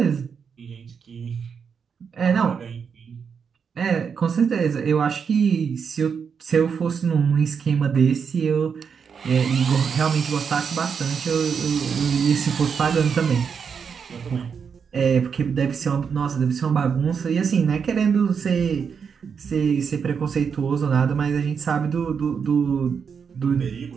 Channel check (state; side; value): quieter; left; 6.4 dB